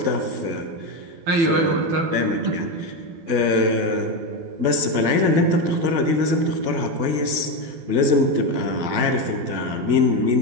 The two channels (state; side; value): late; left; 12 ms